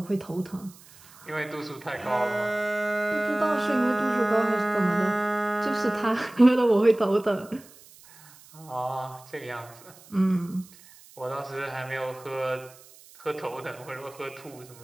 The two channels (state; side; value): noise; right; hiss, 23 dB below the sound